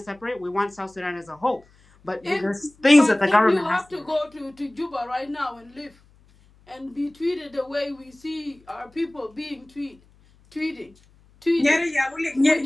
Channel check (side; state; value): left; noise; hum, 30 dB below the sound